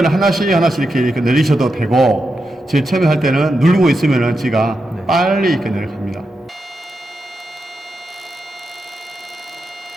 하나씩 이렇게 내리셔도 되고, 제일 처음에 할 때는 누르고 있으면은 지가 빨리 이렇게 내려갑니다.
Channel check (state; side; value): normal; both; correlation 0.87